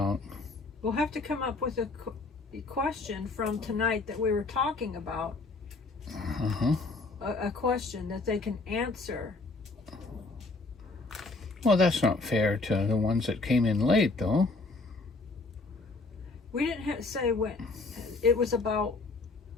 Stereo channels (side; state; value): right; quieter; 3.6 dB